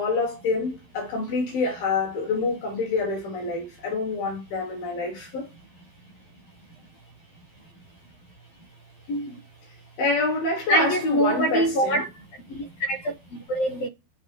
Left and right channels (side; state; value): right; late; 12 ms